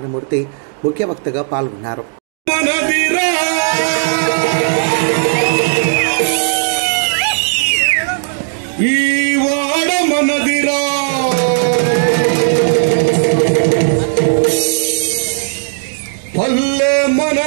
ముఖ్య వక్తగా పాల్గొన్నారు. ఈ వాడ మనదిరా, పల్లె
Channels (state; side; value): silent; left; digital silence